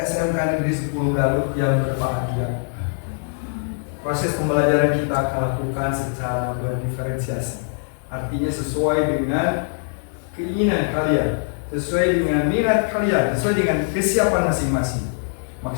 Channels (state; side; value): silent; right; digital silence